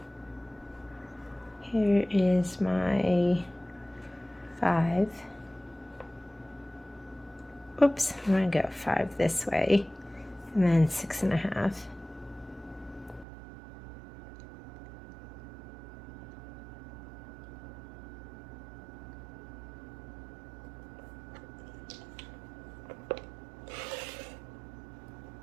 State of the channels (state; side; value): drops out; left; at 13.2 s